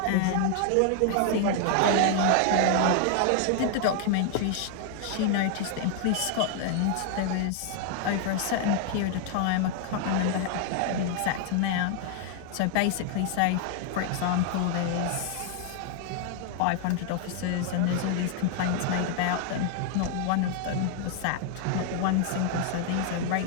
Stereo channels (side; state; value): both; different; correlation 0.00